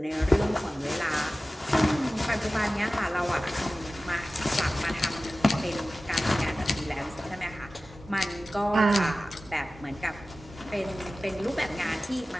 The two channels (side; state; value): both; normal; correlation 0.96